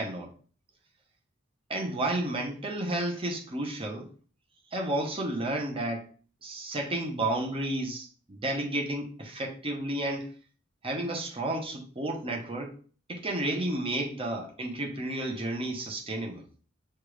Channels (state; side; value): normal; both; correlation 0.42